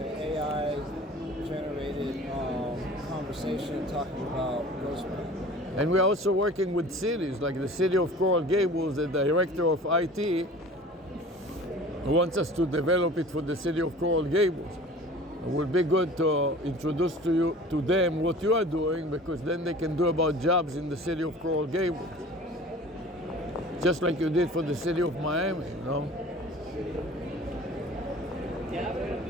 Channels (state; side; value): normal; both; correlation 0.43